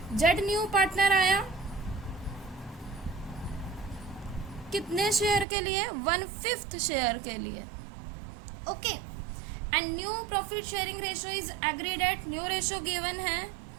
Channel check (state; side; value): drops out; left; at 5.5 s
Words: Z new partner आया कितने शेयर के लिए, 1/5 शेयर के लिए। Okay, and new profit sharing ratio is agreed at, new ratio given है